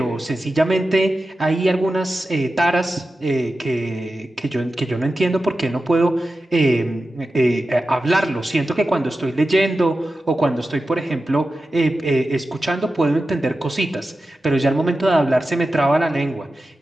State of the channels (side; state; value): both; normal; correlation 0.93